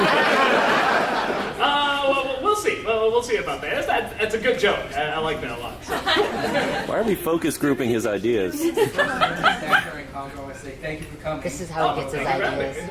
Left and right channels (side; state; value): both; identical; correlation 1.00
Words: Well, we'll see. We'll see about that. That's a good joke. I like that a lot. Why are we focus grouping his ideas? Actor and Congo, I want to say thank you for coming. This is how he gets his ideas,